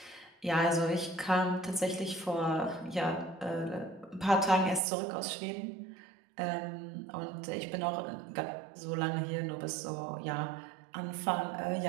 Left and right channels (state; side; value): drops out; left; at 4.8 s